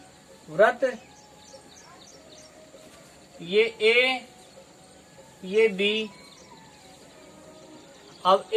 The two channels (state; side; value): identical; both; correlation 1.00